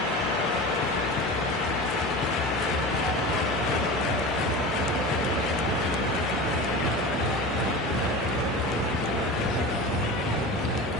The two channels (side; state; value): both; normal; correlation 0.31